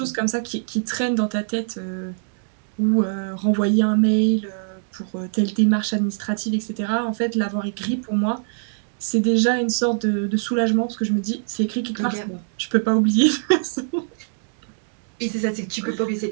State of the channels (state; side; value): silent; left; digital silence